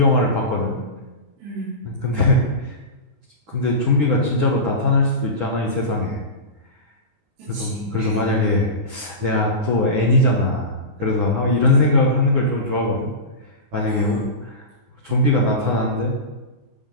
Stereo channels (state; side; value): late; left; 19 ms